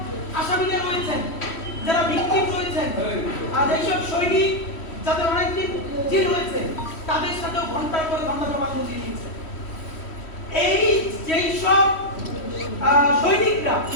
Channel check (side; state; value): right; late; 3.1 ms